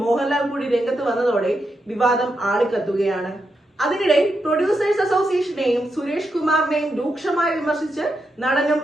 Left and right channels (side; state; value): both; normal; correlation 0.84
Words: മോഹൻലാൽ കൂടി രംഗത്ത് വന്നതോടെ വിവാദം ആളിക്കത്തുകയാണ്. അതിനിടെ പ്രൊഡ്യൂസേഴ്സ് അസോസിയേഷനെയും സുരേഷ് കുമാറിനെയും രൂക്ഷമായി വിമർശിച്ച് നടനും